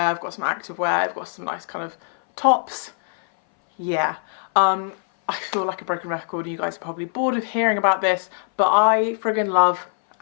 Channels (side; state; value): right; silent; 60 dB below the other